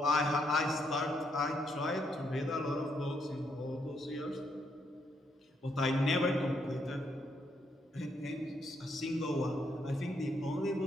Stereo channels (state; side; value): normal; both; correlation 0.76